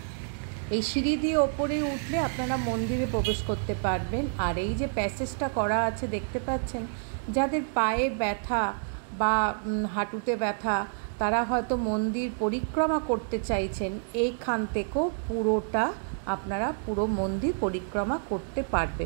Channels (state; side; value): silent; left; digital silence